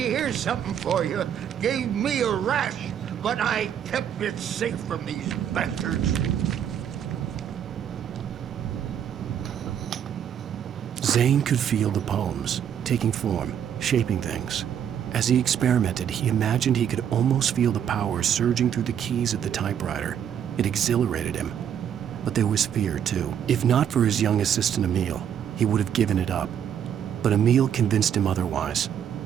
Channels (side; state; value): left; quieter; 9.0 dB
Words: something for you. Gave me a rash, but I kept it safe from these bastards. Zane could feel the poems, taking form, shaping things. As he experimented, he imagined he could almost feel the power surging through the keys of the typewriter. It exhilarated him. But there was fear, too. If not for his young assistant Emil, he would have given it up. But Emil convinced him otherwise.